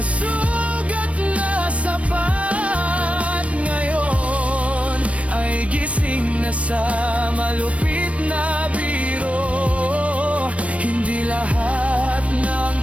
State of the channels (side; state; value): left; late; 0.064 ms